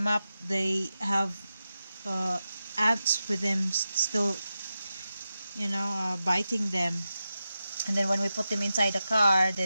up, they have ants with them still, you know, biting them. And then when we put them inside the car,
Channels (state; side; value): inverted; both; correlation -0.91